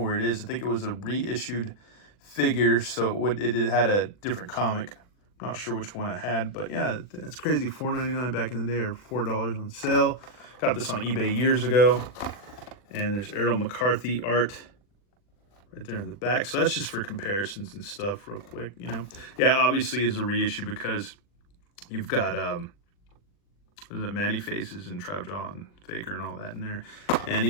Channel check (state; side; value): late; right; 40 ms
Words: it is. I think it was a reissued figure, so it had a different comic. I'm not sure which one I had, but yeah, that's crazy. $4.99 back in the day, or $4 on sale. Got this on eBay years ago. And there's Errol McCarthy art right there in the back. So that's just for comparisons and stuff real quick, you know. Yeah, obviously is a reissue because you've got Manny Faces and Trapjaw and Faker and all that in there. And